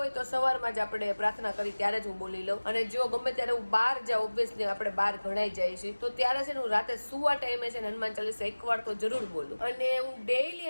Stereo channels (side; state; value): both; inverted; correlation -1.00